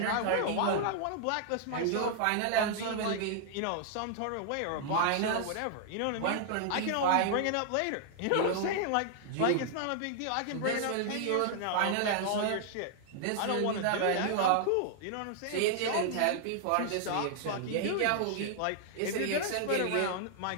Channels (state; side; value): different; both; correlation -0.01